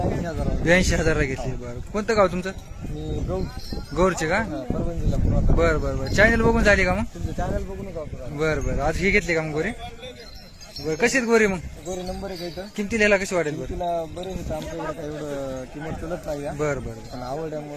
82,000 घेतले. बरं कोणतं गाव तुमचं? गौरचे का? बरं बरं बरं. चॅनल बघून झाली का मग? चॅनल बघून. बरं बरं. आज हे घेतले का मग गोरे? बरं कशी आहेत गोरे मग? गोरे नंबर 1 आहे. किमतीला ह्याला कशी वाटेल? बरं तिला बरे होते. आमच्याकडे काही एवढं किंमत चलत नाही. बरं बरं. पण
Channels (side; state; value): both; identical; correlation 1.00